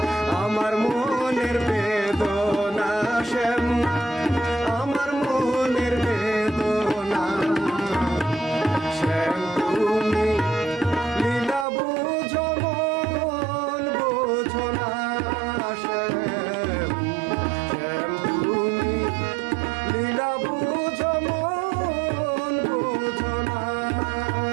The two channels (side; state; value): left; drops out; at 11.7 s